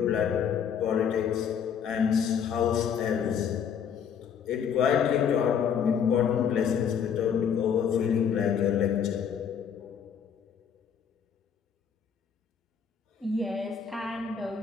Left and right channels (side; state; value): right; quieter; 7.6 dB